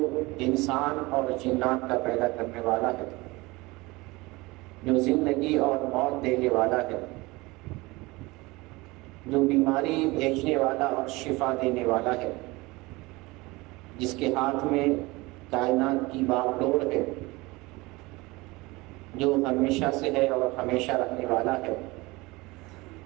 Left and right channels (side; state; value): left; quieter; 22.5 dB